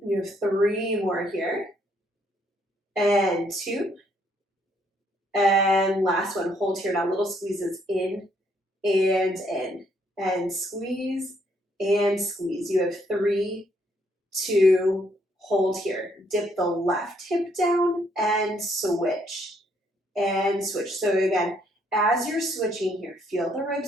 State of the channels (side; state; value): both; normal; correlation 0.70